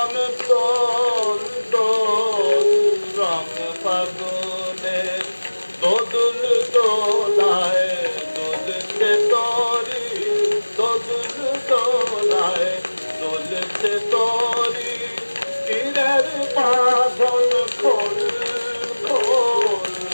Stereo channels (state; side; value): inverted; both; correlation -1.00